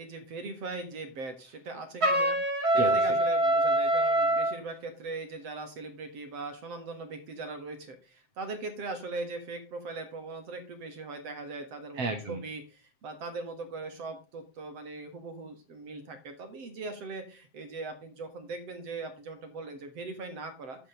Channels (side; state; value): left; late; 7.8 ms